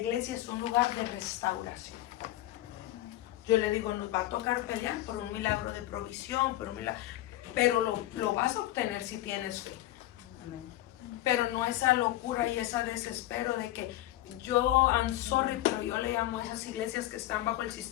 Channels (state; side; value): quieter; right; 15.3 dB